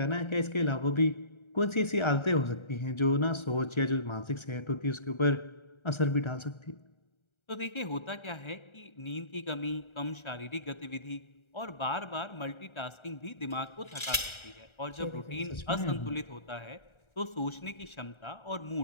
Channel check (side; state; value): right; late; 1.3 ms